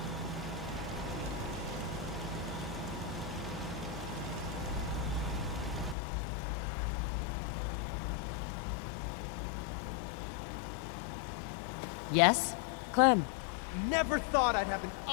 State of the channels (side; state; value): right; drops out; at 6.0 s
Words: Yes? Clem. Never thought I'd have an